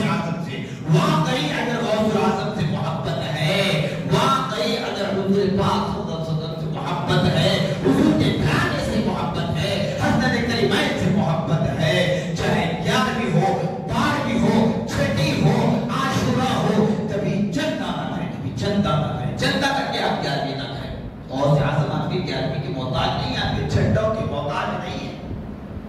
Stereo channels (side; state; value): both; identical; correlation 1.00